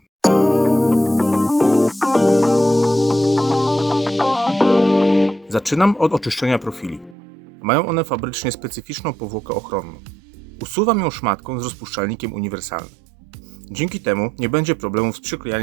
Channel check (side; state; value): left; drops out; at 7.2 s